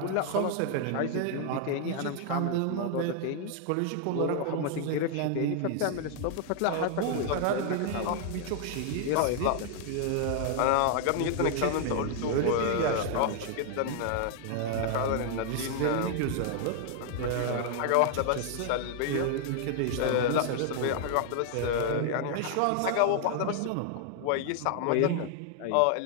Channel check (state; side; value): different; both; correlation 0.00